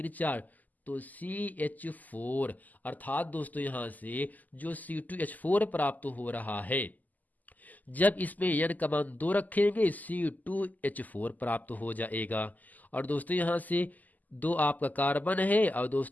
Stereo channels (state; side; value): late; right; 0.081 ms